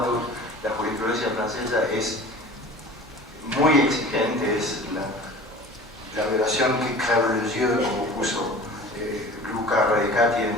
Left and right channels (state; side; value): normal; both; correlation 0.41